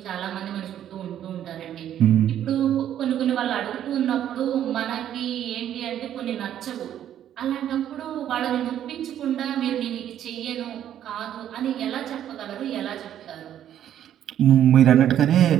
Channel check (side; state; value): left; quieter; 10.8 dB